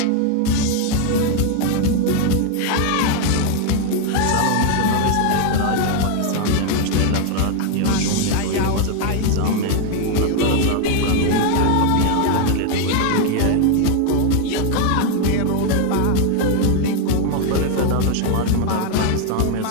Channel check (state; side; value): different; both; correlation 0.00